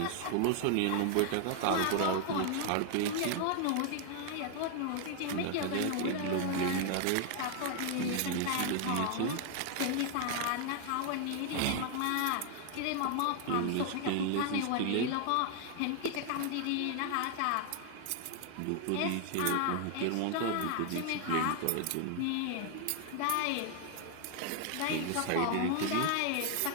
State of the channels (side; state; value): both; different; correlation 0.00